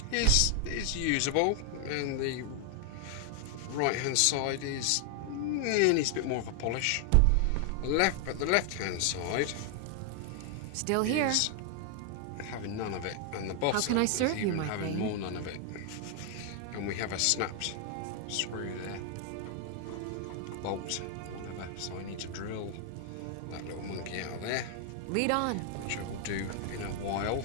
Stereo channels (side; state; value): both; different; correlation 0.00